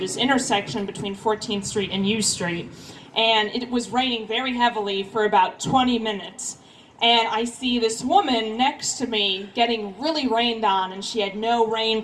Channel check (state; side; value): identical; both; correlation 1.00